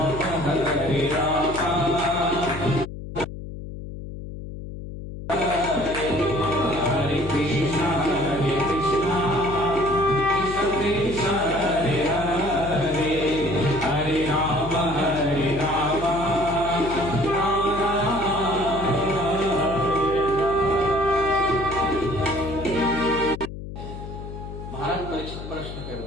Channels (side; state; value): left; noise; hum, 10 dB below the sound